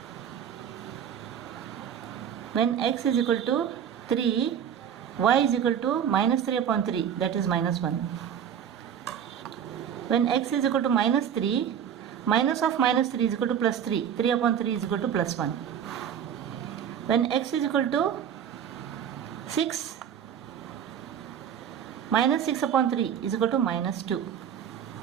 When x is equal to 3, y is equal to minus 3 upon 3, that is minus 1. When x is equal to minus 3, minus of minus 3 is equal to plus 3. 3 upon 3 is equal to plus 1. When x is equal to 6, minus 6 upon 3 is equal to minus 2.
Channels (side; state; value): left; quieter; 8.7 dB